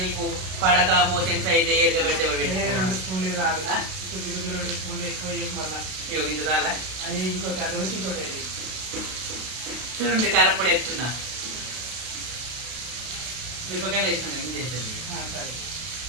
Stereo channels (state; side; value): late; left; 32 ms